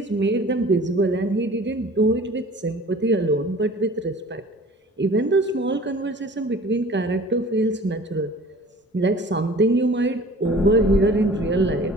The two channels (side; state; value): both; normal; correlation 0.46